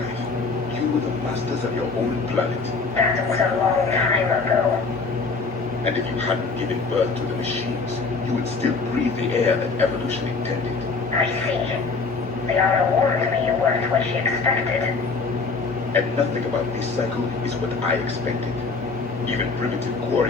You were the masters of your own planet. That was a long time ago. And if you hadn't given birth to the machines, you would still breathe the air that evolution intended. I see. Liara warned me you weren't what she expected. And nothing about this cycle is what I expected. Even primitive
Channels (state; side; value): quieter; right; 4.4 dB